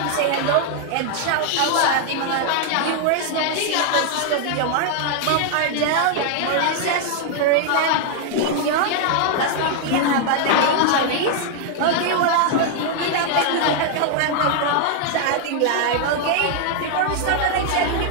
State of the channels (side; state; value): both; different; correlation 0.00